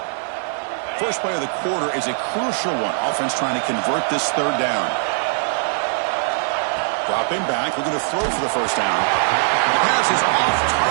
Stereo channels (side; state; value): left; silent; 64 dB below the other